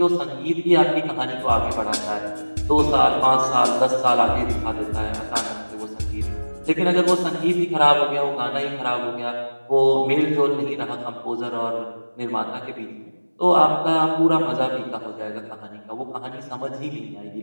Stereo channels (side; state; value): both; inverted; correlation -1.00